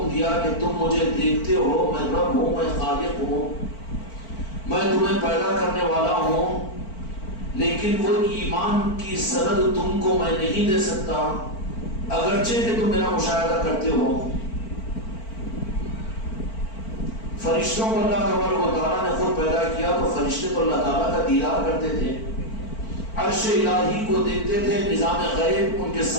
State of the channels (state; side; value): late; right; 4.5 ms